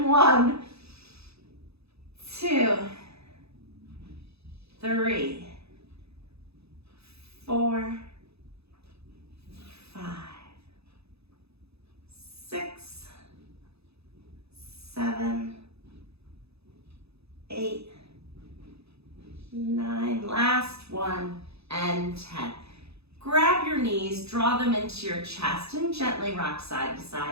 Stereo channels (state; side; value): late; left; 0.79 ms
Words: 1, 3, 4, 5, 6, 7, 8, 9, last one, and 10. Grab your knees, draw them into your chest, and gently rock side to